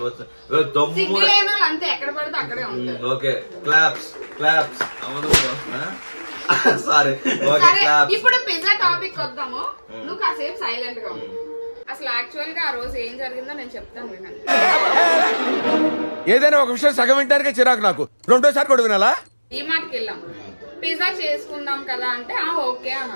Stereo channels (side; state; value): both; inverted; correlation -1.00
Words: వచ్చింది. ఓకే క్లాప్స్ క్లాప్స్ అవదు. Sorry okay claps. ఇప్పుడు పిజ్జా టాపిక్ వద్దాము. నువ్వు కాసేపు సైలెంట్ గా ఉంది. అసలు యాక్చువల్ గా ఆ రోజు ఏం జరిగిందో నేను చెప్తాను వినండి. ఏదైనా ఒక విషయం సగం వింటానికే చిరాకు నాకు, రెండోసారి కూడా వినాలా? ఈ మాటకి వెళ్ళాం, పిజ్జా చేసుకుందాం కదా అంటే ఓకే